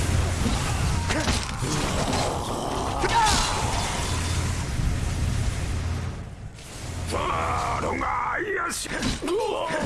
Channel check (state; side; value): identical; both; correlation 1.00